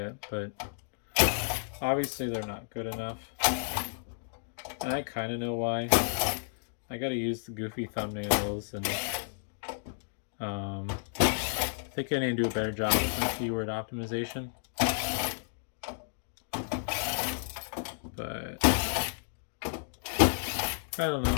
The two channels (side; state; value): right; silent; digital silence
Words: but obviously they're not good enough. And I kind of know why. I gotta use the goofy thumbnails, and I think I need to do a better job with my keyword optimization. But I don't